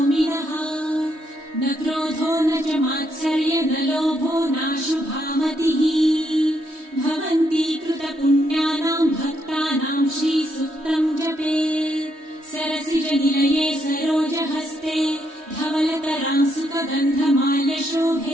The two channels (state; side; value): late; left; 3.2 ms